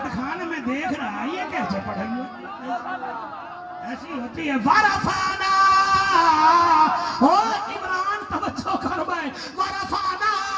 میں دیکھ رہا یہ کیسے پڑھائی ایسی ہوتی ہے ورفانا عمران توجہ کر بھائی ورفانا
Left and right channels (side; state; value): both; identical; correlation 1.00